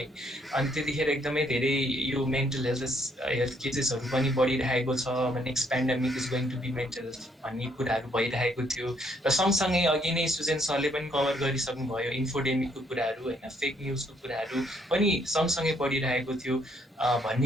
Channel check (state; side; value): normal; both; correlation 0.69